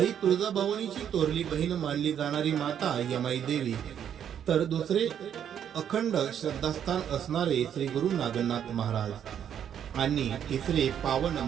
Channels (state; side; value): quieter; left; 9.1 dB